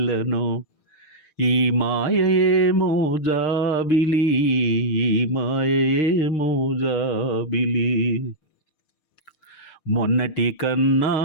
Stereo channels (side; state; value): right; late; 6.5 ms